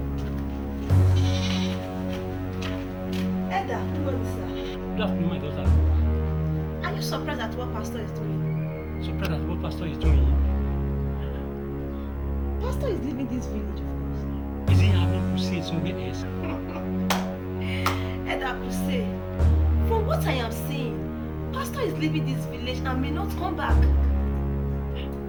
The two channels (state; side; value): identical; both; correlation 1.00